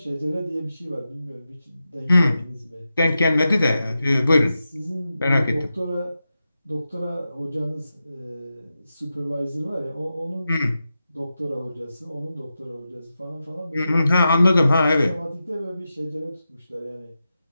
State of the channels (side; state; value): both; inverted; correlation -0.91